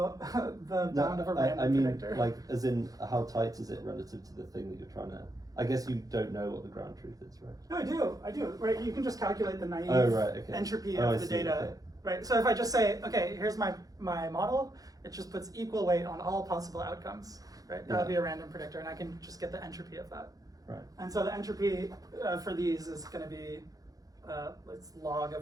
the bound of a random predictor. I mean, like, as in, how tight is it relative to the thing that you're trying to? I guess you don't know what the ground truth is, right? No, I do. Right, you can just calculate the naive entropy of the data. Okay. Right. So if I just say, okay, here's my model, it just puts equal weight on all possible outcomes. Right. That would be a random predictor, and I can just get the entropy of that. Right. And so the entropy for these is going to be it's log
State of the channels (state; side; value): late; left; 0.17 ms